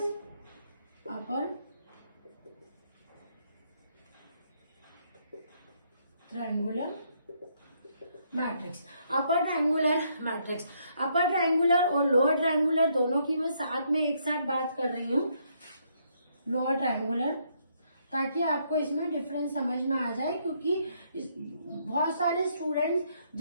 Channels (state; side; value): inverted; both; correlation -0.72